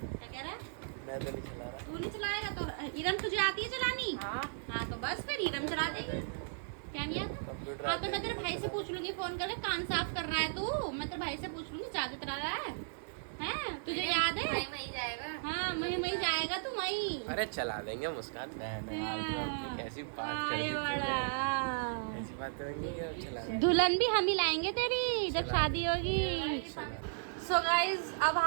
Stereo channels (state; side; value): silent; left; digital silence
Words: क्या कह रहा है? मैं तो नहीं चला रहा। तू नहीं चलाएगा तो इरम तुझे आती है चलानी? हाँ तो बस फिर इरम चला देगी। क्या नहीं आता? कंप्यूटर हाँ तो मैं तेरे भाई से पूछ लूंगी फोन करके, कान साफ कर रहा है तू। मैं तेरे भाई से पूछ लूंगी, ज्यादा चला रहा है हैं? तुझे याद है? वही जाएगा। हाँ वही जाएगा तू वही। अरे चला देंगे, मुस्कान बहन है यार, तो अपनी कैसी बात कर अरे दी तूने। बड़ा। ऐसी बात होंगी कि अब चला देंगे। दुल्हन भी हम ही लाएंगे तेरी जब शादी होगी। सो गाइज अब